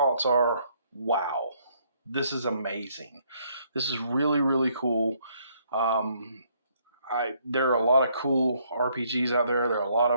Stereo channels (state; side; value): inverted; both; correlation -0.68